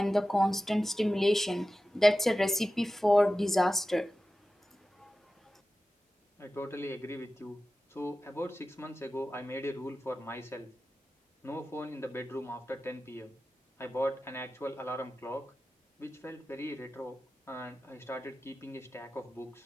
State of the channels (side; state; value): both; normal; correlation 0.94